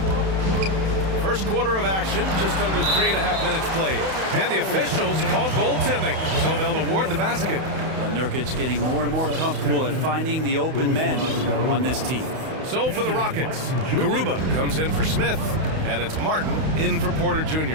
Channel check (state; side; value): late; left; 31 ms